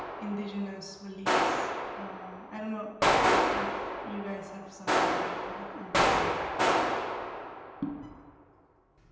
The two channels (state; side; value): identical; both; correlation 1.00